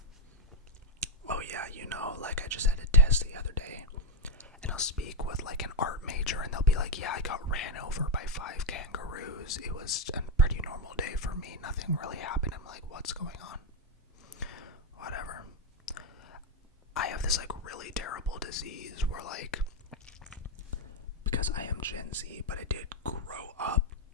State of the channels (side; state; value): both; normal; correlation 0.02